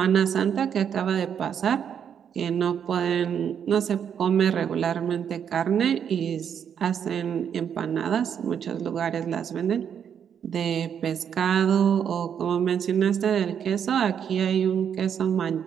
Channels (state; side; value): quieter; left; 8.2 dB